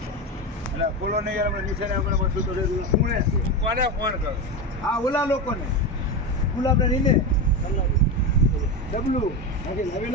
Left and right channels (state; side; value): normal; both; correlation 0.17